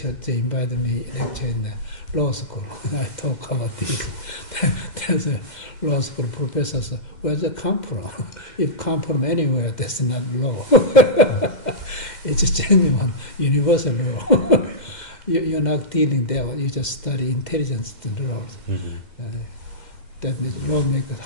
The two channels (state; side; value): late; right; 2.1 ms